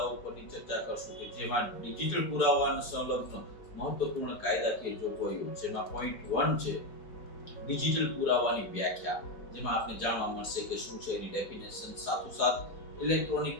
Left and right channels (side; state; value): right; late; 4.9 ms